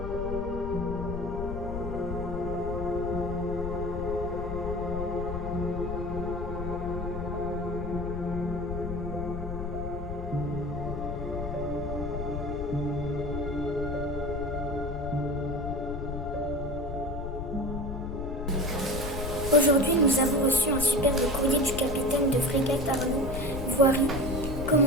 Aujourd'hui, nous avons reçu un superbe courrier du capitaine de frégate Arnaud Voiry,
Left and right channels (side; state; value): left; noise; rumble, 5 dB below the sound